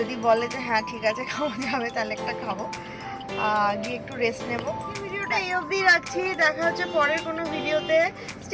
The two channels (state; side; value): identical; both; correlation 1.00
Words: বলে যে হ্যাঁ ঠিক আছে খাওয়া যাবে, তাহলে একটা খাবো, গিয়ে একটু রেস্ট নেবো। ভিডিওটা এই অবধি রাখছি, দেখা হচ্ছে পরের কোনো ভিডিওতে।